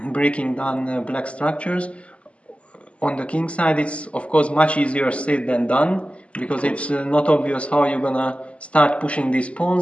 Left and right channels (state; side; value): late; right; 0.060 ms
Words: breaking down black structures. On the king side, it's of course much easier said than done, because it's not obvious how you're gonna start pushing these